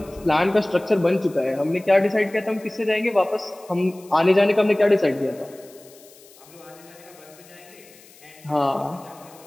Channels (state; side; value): noise; left; hiss, 24 dB below the sound